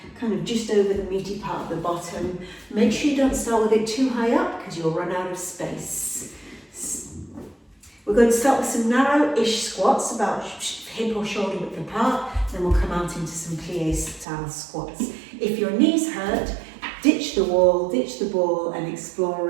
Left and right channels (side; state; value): left; drops out; at 14.2 s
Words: kind of just over the meaty part of the bottom. Make sure you don't start with it too high up because you'll run out of space. We're going to start with some narrow-ish squats, about hip or shoulder width apart. Then we'll come out into some plie style squats. If your knees hurt, ditch the wall, ditch the ball, and explore